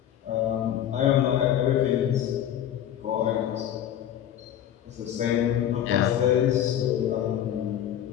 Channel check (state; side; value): quieter; right; 10.7 dB